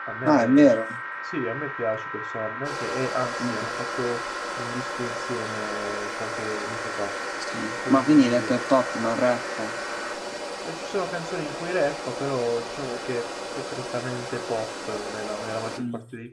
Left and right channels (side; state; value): both; identical; correlation 1.00